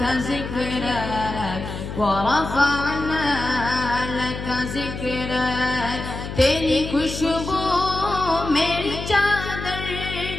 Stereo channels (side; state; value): left; noise; hum, 7 dB below the sound